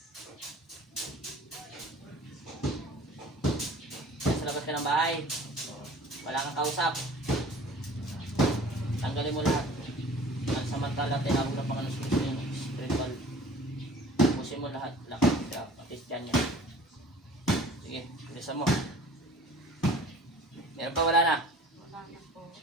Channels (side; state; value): both; normal; correlation 0.47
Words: Nasa labas ka ng bahay? Wala kang kausap? Tanggalin mo lahat. Ang samantala, tinawag ng Panginoon sa Kristo yung spiritual. Pusin mo lahat. Lakas ka. Patis dyan yan. Sige, bilisan mo. Meron pa, wala na. Wala na po.